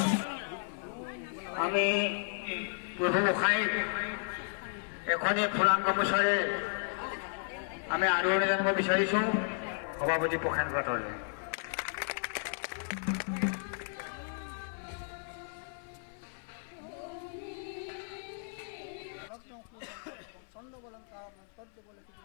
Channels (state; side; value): silent; right; 55 dB below the other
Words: আমি প্ৰভু গোসাঁইক এখনি ফুলাম গামোচাৰে আমি আদৰণি জানিব বিচাৰিছোঁ সভাপতি প্ৰসেন পাটৰলৈ।